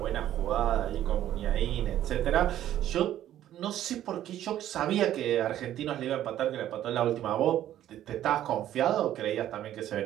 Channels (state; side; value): quieter; left; 12.2 dB